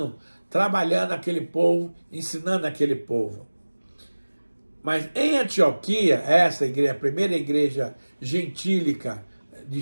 trabalhando aquele povo, ensinando aquele povo. Mas em Antioquia, essa igreja, a primeira igreja gentílica de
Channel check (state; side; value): inverted; both; correlation -1.00